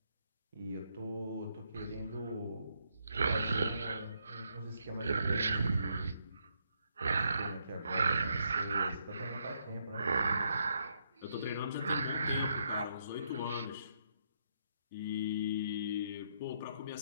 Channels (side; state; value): both; inverted; correlation -0.75